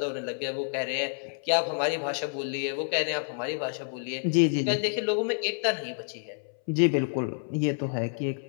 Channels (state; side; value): silent; right; 59 dB below the other